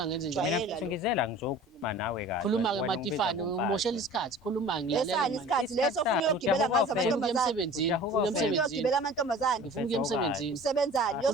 ngenze Jwayele. njani mina mfethu ngizela ngizokhuluma nawe kahle khuluma-ke Wena Matifane ungibizwa umoshela ngomfazi. isikhathi khuluma lesani isikhathi leso ufuna uyogibela ngazo ngifuna ukuya amantombazane emsebenzini Ujahuka ufuna ufuna emsebenzini uyogibela amantombazane ngifuna ukuya emsebenzini usebenzani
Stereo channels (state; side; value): normal; both; correlation 0.43